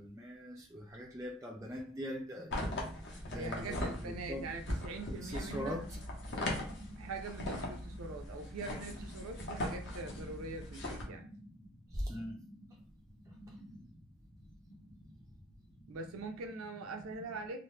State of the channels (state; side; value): normal; both; correlation 0.46